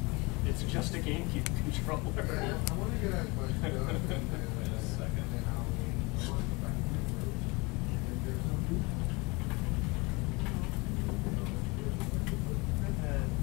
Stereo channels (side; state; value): right; quieter; 26.2 dB